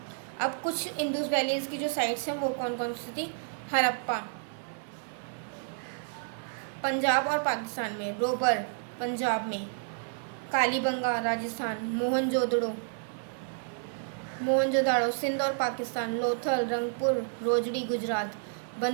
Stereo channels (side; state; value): left; silent; 57 dB below the other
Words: अब कुछ इंदूज वैलीज़ की जो साइट्स हैं वो कौन कौन सी थी, हड़प्पा पंजाब और पाकिस्तान में, रोबर पंजाब में, कालीबंगा राजस्थान, मोहनजोदड़ो मोहनजोदाड़ो सिंध और Pakistan, Lothal Rangpur Rojdi Gujarat,